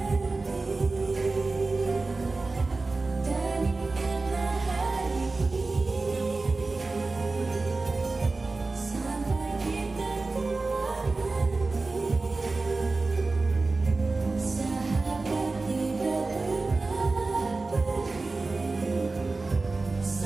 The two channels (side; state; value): left; quieter; 3.6 dB